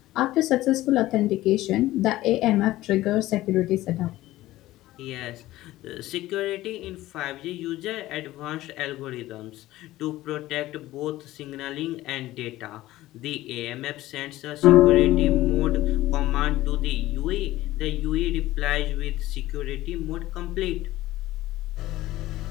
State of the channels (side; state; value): right; quieter; 16.3 dB